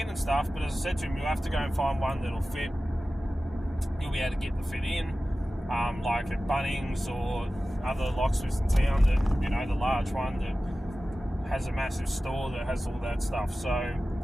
and stuff, but as I said to him, you'll have to go and find one that'll fit. You'll be able to get the fit in, like at Bunnings or other locksmiths in town that, the large one that has a massive store that has all that stuff. So,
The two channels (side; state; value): both; normal; correlation 0.95